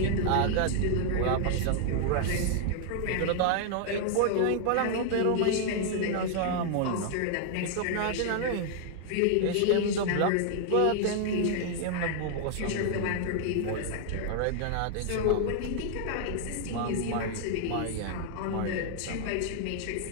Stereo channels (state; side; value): different; both; correlation 0.00